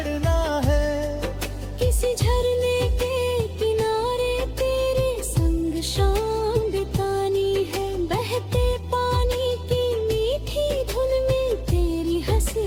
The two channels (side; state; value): both; identical; correlation 1.00